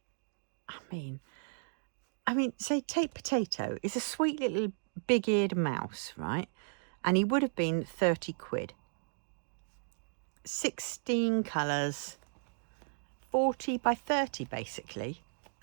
I mean, say take Potato. It's a sweet little big-eared mouse, right? And he would have been 30 quid. 16 colours, 40 by 30 basically,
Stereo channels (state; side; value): silent; left; digital silence